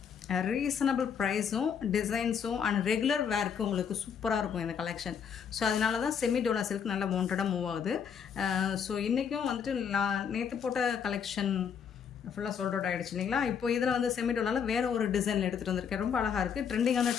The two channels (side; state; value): right; quieter; 7.3 dB